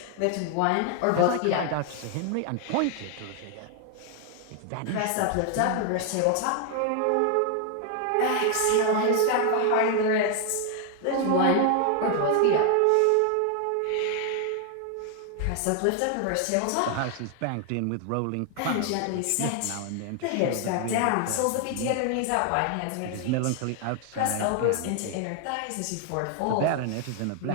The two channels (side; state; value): both; different; correlation 0.00